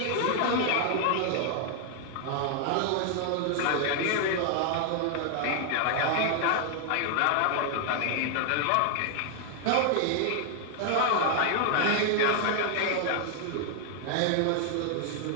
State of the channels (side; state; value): both; different; correlation 0.00